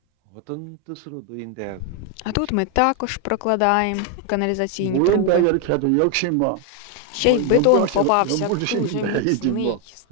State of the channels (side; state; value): both; different; correlation 0.01